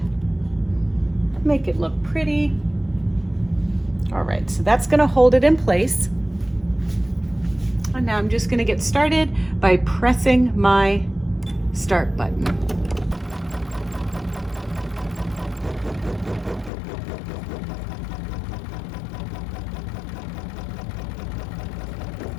make it look pretty. All right, so that's going to hold it in place. And now I'm just going to get started by pressing my start button.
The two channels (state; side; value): drops out; right; at 16.7 s